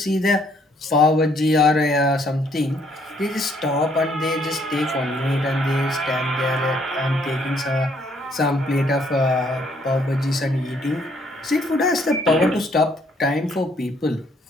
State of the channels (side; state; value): both; normal; correlation 0.67